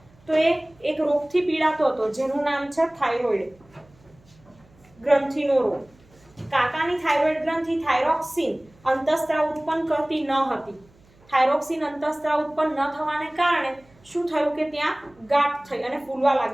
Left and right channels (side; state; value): right; noise; hum, 30 dB below the sound